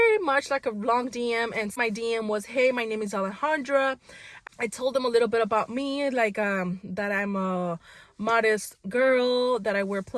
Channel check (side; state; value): both; identical; correlation 1.00